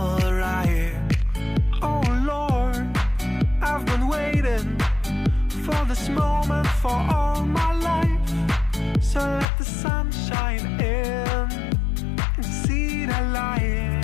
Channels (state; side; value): drops out; right; at 9.5 s